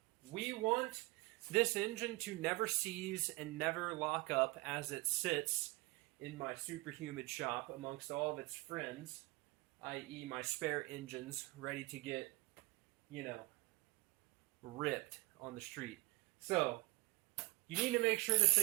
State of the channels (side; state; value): left; quieter; 22.8 dB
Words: we want this engine to never seize and never lock up as it sits in my super humid shop amongst all of its friends, i.e. my spare engines ready to get, ripped on the street. So, you need to make sure this